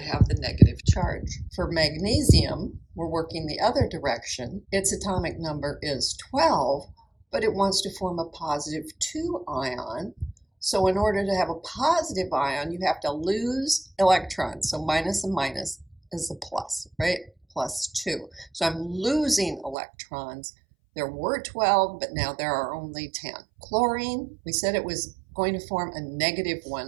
have the negative charge. For magnesium, we're working the other direction. Its atomic number is 12, but it wants to form a +2 ion. So in order to have a positive ion, you have to lose electrons. So minus and minus is a plus, right? +2. So I'm losing electrons. There were 12, but now there are only 10. Chlorine, we said it was going to form a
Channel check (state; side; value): drops out; left; at 19.8 s